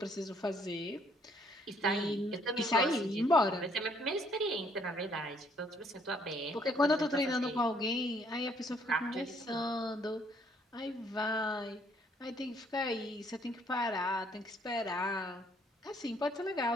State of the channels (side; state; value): both; normal; correlation 0.65